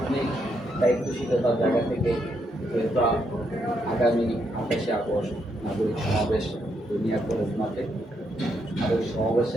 দায়িত্বশীলতার জায়গা থেকে যেহেতু আগামী 28শে আগস্ট নাগরিক সমাবেশ দুনিয়া কলেজ মাঠে, আর ওই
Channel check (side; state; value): both; normal; correlation 0.77